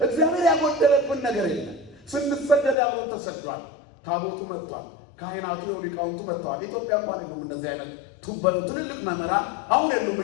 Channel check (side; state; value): right; drops out; at 2.8 s